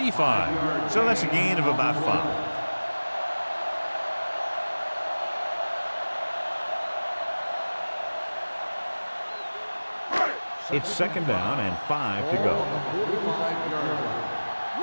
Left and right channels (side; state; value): both; inverted; correlation -1.00